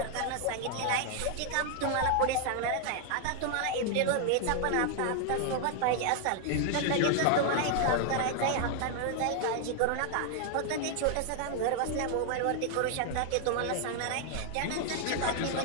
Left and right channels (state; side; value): different; both; correlation 0.00